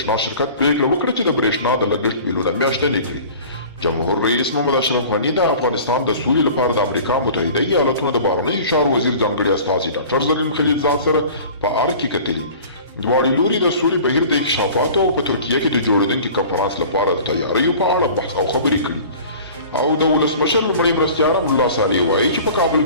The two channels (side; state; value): both; inverted; correlation -0.43